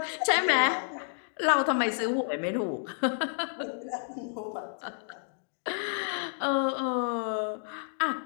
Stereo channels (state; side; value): silent; right; digital silence